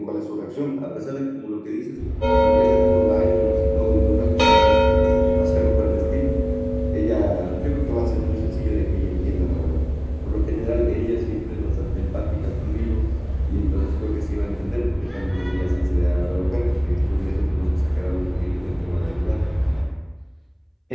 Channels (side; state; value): both; identical; correlation 1.00